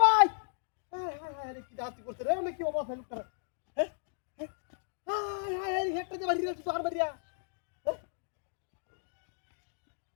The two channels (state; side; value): silent; right; digital silence